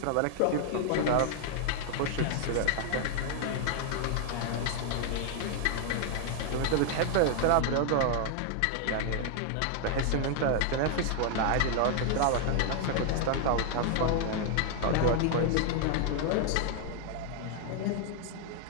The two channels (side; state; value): both; different; correlation 0.00